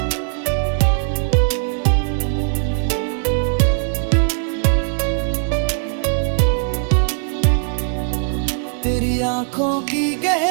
तेरी आंखों की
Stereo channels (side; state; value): left; silent; digital silence